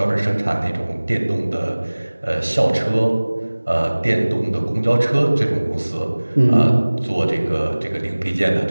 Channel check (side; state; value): both; inverted; correlation -1.00